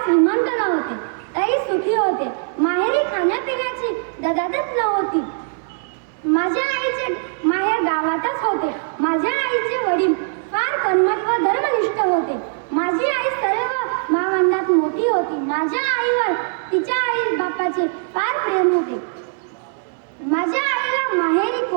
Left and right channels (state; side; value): silent; left; 65 dB below the other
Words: श्रीमंत नव्हते, तरी सुखी होते. माहेरी खाण्यापिण्याची ददादत नव्हती. माझ्या आईचे माहेर गावातच होते. माझ्या आईचे वडील फार कर्मठ व धर्मनिष्ठ होते. माझी आई सर्व भावंडात मोठी होती. माझ्या आईवर तिच्या आई बापाचे फार प्रेम होते. माझ्या आईला माहेरी